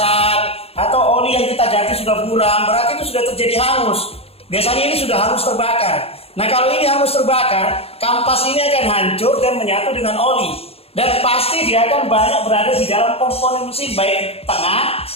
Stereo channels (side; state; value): right; late; 0.29 ms